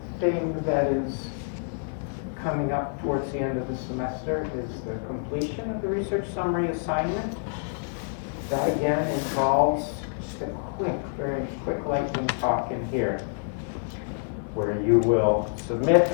thing that is coming up towards the end of the semester is the completion of the research summary assignment. That again involves just a very quick lightning talk in here, where you will submit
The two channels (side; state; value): right; silent; 60 dB below the other